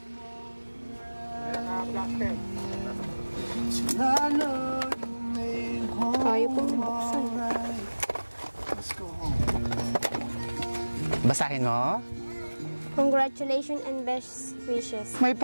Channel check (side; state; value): both; inverted; correlation -1.00